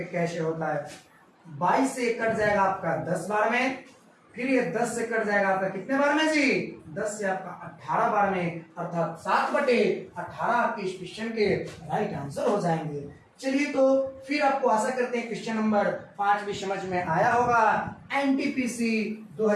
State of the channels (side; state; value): both; identical; correlation 1.00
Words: कैसे होता है। 22 से कट जाएगा आपका 10 बार में, फिर ये 10 से कट जाएगा आपका कितने बार में जी? 10 से आपका 18 बार में, अर्थात 7/18 आपके इस क्वेश्चन के राइट आंसर हो जाएंगे। चलिए तो फिर आपको आशा करते हैं क्वेश्चन नंबर 5 भी समझ में आया होगा। एनटीपीसी